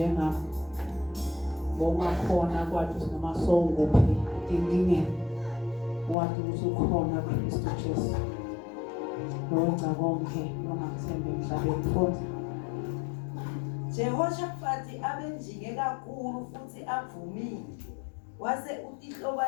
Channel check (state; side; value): drops out; right; at 6.2 s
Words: bongakhona kwathi noma sowunguphi enkingeni wathi usukhona Kristu Jesu lowenza konke longathembe emhlabeni mfowethu. Jehoshaphat abenjinge kakhulu futhi avumile wase